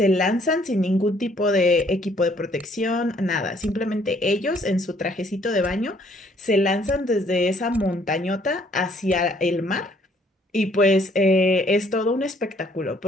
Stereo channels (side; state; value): both; normal; correlation 0.64